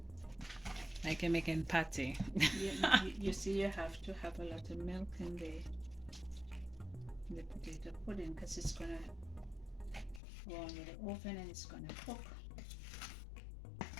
Like you're making patty. You see, you have to have a lot of milk in the potato pudding because it's gonna go on with the oven and it's gonna cook.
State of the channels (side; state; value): right; drops out; at 10.2 s